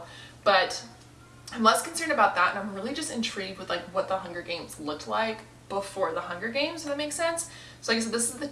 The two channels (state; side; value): identical; both; correlation 1.00